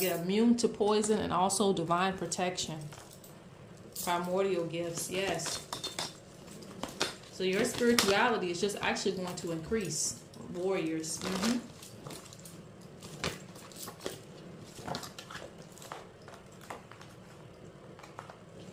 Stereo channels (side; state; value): both; identical; correlation 1.00